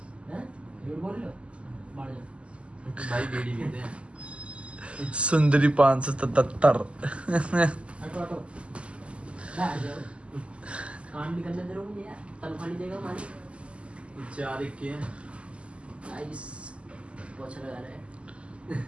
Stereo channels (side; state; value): left; late; 0.056 ms